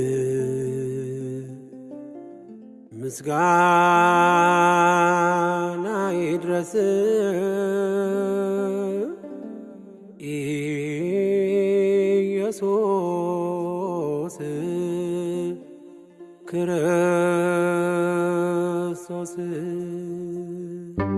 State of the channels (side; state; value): both; identical; correlation 1.00